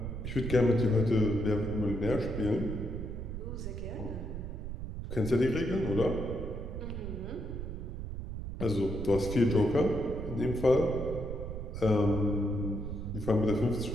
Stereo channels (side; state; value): right; noise; rumble, 6 dB below the sound